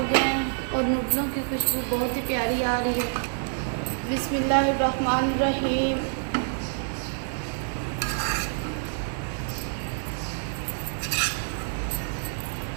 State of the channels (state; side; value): silent; left; digital silence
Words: गए हैं और नूडलों की खुशबू बहुत ही प्यारी आ रही है। बिस्मिल्लाहिर्रहमानिर्रहीम।